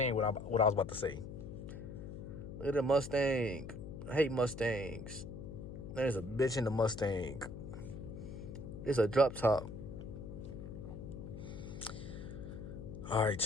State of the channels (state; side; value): noise; left; hum, 9 dB below the sound